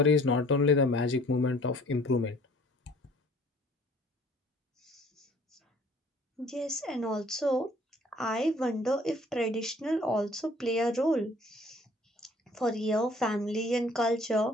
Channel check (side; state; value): both; normal; correlation 0.55